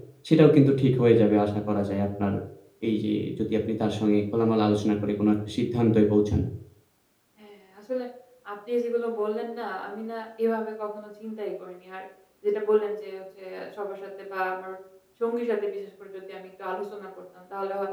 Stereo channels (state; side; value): identical; both; correlation 1.00